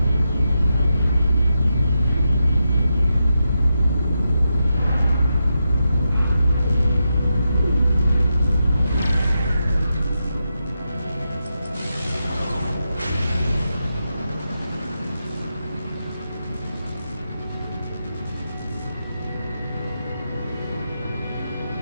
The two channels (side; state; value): both; inverted; correlation -0.87